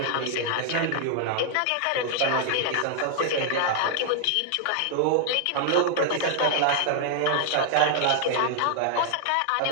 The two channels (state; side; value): different; both; correlation 0.00